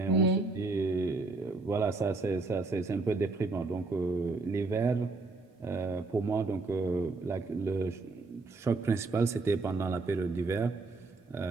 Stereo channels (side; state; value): left; quieter; 3.6 dB